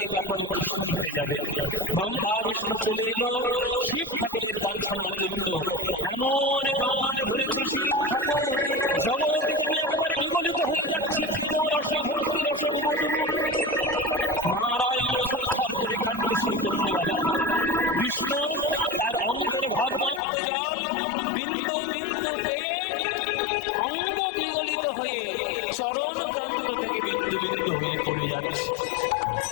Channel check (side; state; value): right; drops out; at 20.2 s